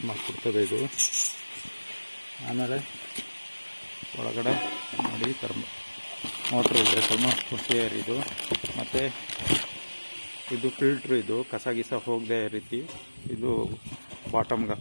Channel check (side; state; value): both; inverted; correlation -1.00